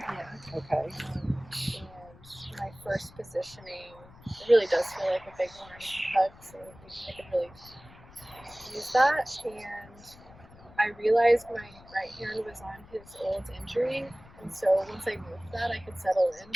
Yeah. Okay. And my first positioning, it really does feel like a big warm hug, so I could really use that. And I realized my right hand was on his old injury, and so once I moved that, I could settle in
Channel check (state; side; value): noise; left; rumble, 22 dB below the sound